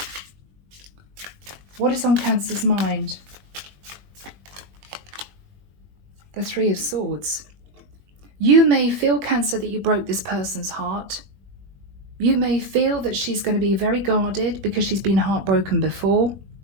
What is on Cancer's mind? The 3 of Swords. You may feel, Cancer, that you broke this person's heart. You may feel that she's going to be very guarded because she's been heartbroken before.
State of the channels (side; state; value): left; late; 21 ms